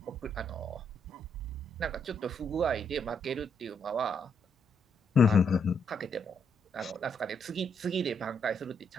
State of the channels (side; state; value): both; normal; correlation 0.76